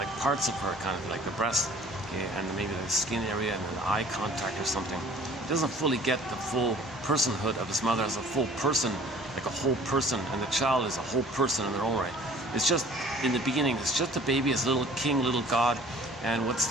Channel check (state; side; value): normal; both; correlation 0.51